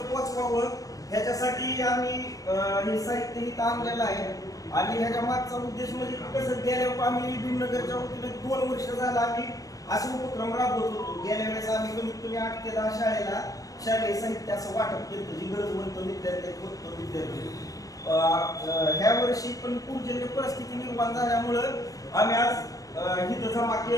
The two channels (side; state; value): right; late; 0.17 ms